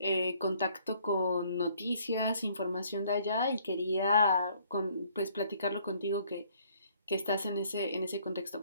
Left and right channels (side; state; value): both; inverted; correlation -0.62